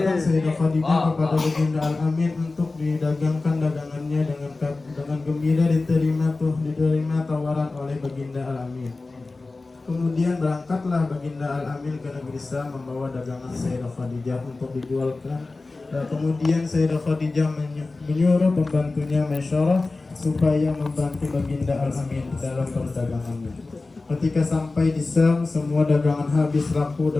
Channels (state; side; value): quieter; right; 3.5 dB